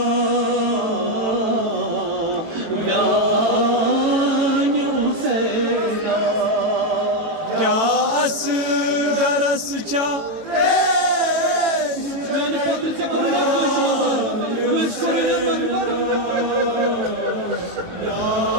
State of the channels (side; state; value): left; late; 18 ms